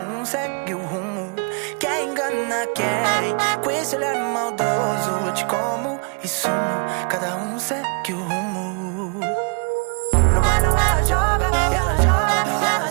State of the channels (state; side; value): quieter; left; 37.8 dB